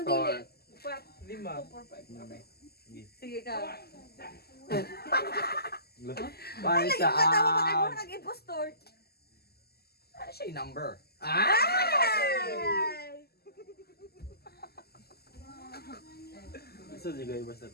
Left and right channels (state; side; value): late; right; 0.46 ms